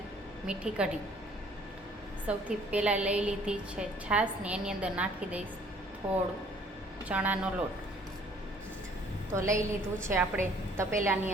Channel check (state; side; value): normal; both; correlation 0.58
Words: મીઠી કઢી. સૌથી પહેલાં લઈ લીધી છે છાશને, એની અંદર નાખી દઈશ થોડું ચણાનો લોટ. તો લઈ લીધું છે આપણે તપેલાની